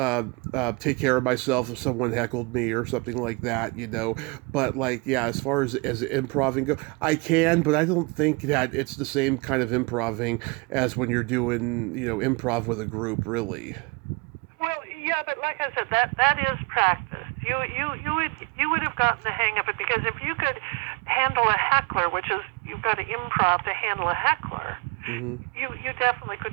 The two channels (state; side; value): quieter; left; 28.8 dB